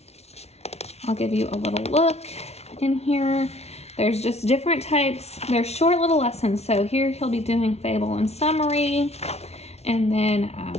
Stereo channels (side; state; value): right; late; 0.31 ms